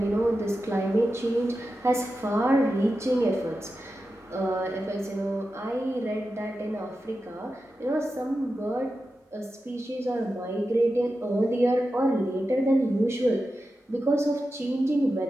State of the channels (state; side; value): normal; both; correlation 0.91